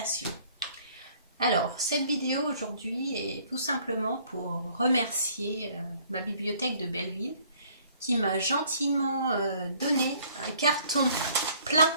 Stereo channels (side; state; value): both; inverted; correlation -0.59